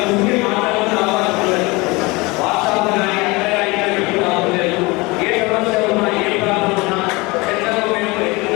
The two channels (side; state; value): right; quieter; 24.2 dB